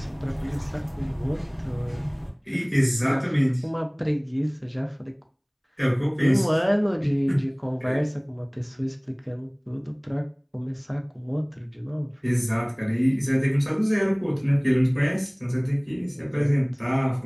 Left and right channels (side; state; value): both; identical; correlation 1.00